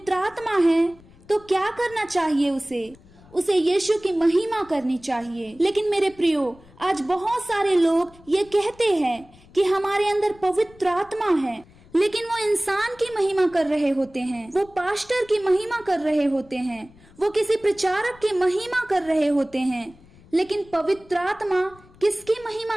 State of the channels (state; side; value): noise; left; rumble, 25 dB below the sound